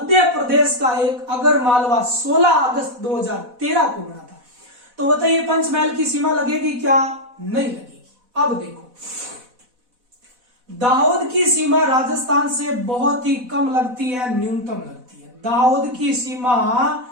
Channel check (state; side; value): late; left; 4.1 ms